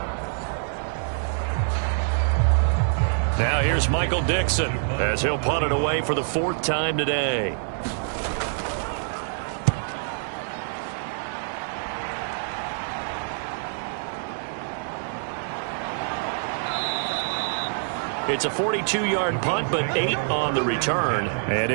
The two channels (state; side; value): silent; left; digital silence